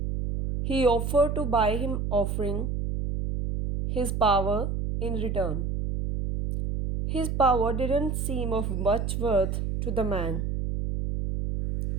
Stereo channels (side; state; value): right; noise; hum, 2 dB below the sound